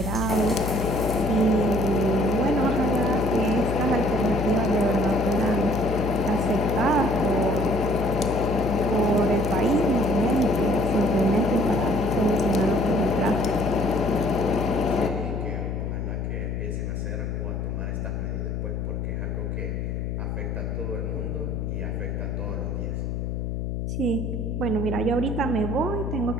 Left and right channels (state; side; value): noise; left; hum, 3 dB below the sound